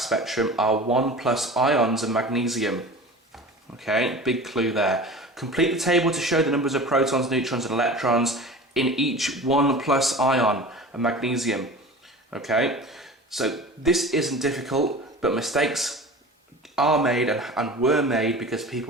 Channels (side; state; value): both; normal; correlation 0.37